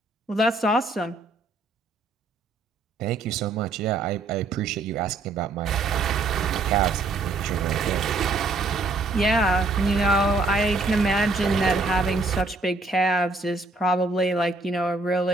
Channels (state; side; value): quieter; left; 3.3 dB